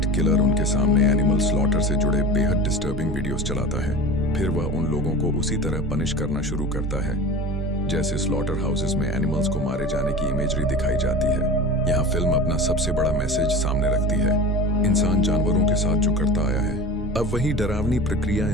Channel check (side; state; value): both; normal; correlation 0.34